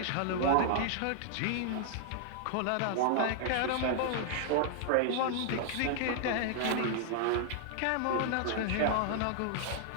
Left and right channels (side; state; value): both; different; correlation -0.01